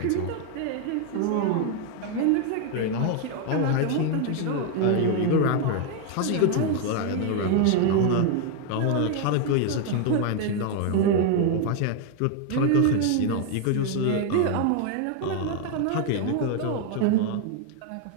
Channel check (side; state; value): both; different; correlation 0.01